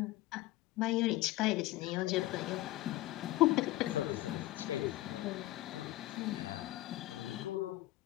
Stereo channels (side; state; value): right; quieter; 17.3 dB